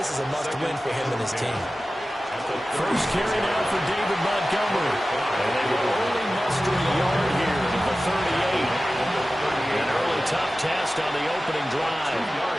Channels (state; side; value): normal; both; correlation 0.95